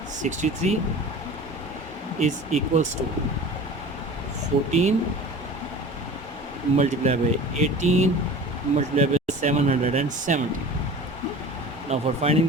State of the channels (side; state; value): both; normal; correlation 0.38